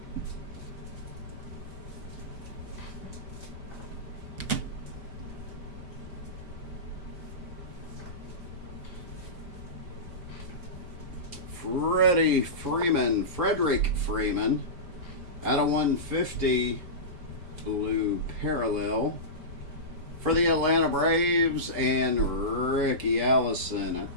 Frederick Freeman out of 150 blue parallel for the Atlanta Braves, and Ricky Allison,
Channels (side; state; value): left; late; 5.0 ms